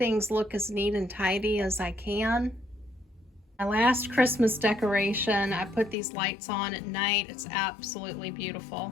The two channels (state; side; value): drops out; right; at 6.0 s